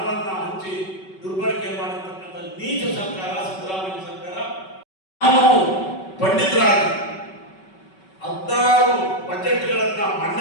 ಹಂಚಿ ದುರ್ಬಳಕೆ ಮಾಡಿರ್ತಕ್ಕಂಥ ನೀಚ ಸರ್ಕಾರ ಸಿದ್ದರಾಮಯ್ಯ ಸರ್ಕಾರ. ನಾವು ಪಂಡಿತರಾಗಿ 16 ಬಜೆಟ್ಗಳನ್ನ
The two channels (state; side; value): late; right; 5.3 ms